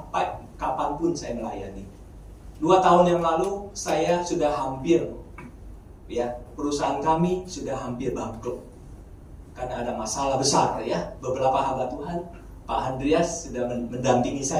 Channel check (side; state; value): both; identical; correlation 1.00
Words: kapanpun saya melayani. 2 tahun yang lalu, saya sudah hampir, ya, perusahaan kami sudah hampir bangkrut. Karena ada masalah besar, ya. Beberapa hamba Tuhan, Pak Andreas sudah mendampingi